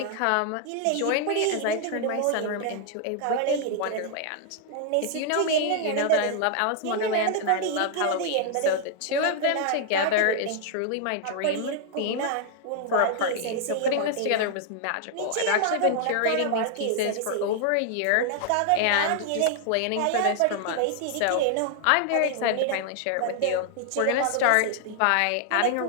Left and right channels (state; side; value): different; both; correlation 0.00